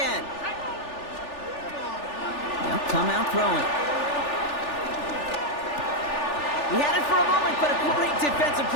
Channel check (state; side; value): late; right; 3.4 ms